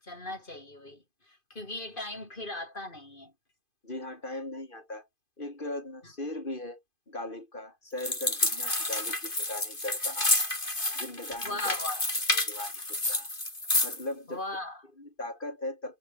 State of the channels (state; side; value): late; right; 2.5 ms